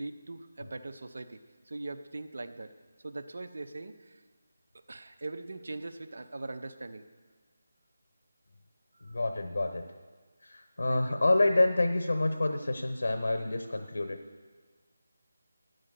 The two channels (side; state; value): both; inverted; correlation -0.98